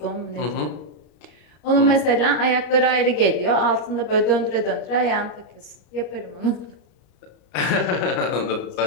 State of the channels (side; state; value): right; late; 33 ms